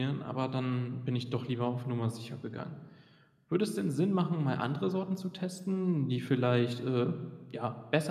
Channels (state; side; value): identical; both; correlation 1.00